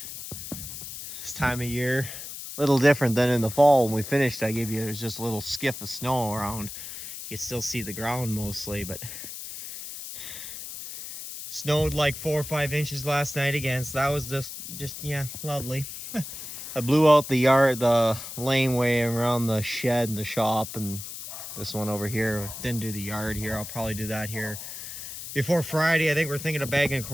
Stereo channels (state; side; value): noise; left; hiss, 10 dB below the sound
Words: This time of year, a little different than in the fall when we finished. I gave you, there's just a little skiff of snow around. You can still see the ground mostly, but snowed like 4 or 5 inches last night again, so that was just yeah, lovely. I blew out the yard, the laneway around the shed and the shop, and this one over here. Didn't do the yard here. I'll probably do that here before Friday. I think we're thinking of bagging